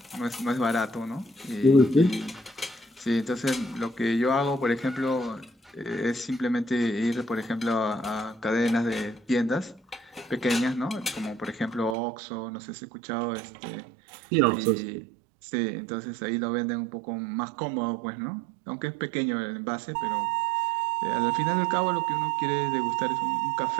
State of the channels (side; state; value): left; drops out; at 12.0 s